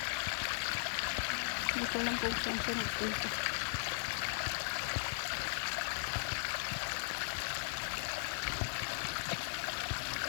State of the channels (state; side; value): silent; right; digital silence